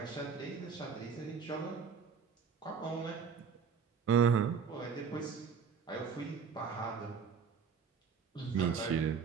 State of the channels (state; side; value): quieter; left; 6.3 dB